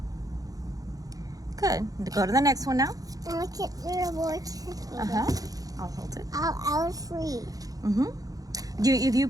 Good. Go to the next one now. Look at your board. I'll hold it. I'll free. Mm-hmm. If you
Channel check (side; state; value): left; late; 0.17 ms